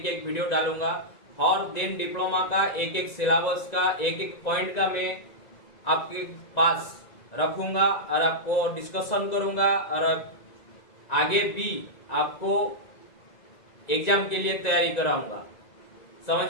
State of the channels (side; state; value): right; late; 1.9 ms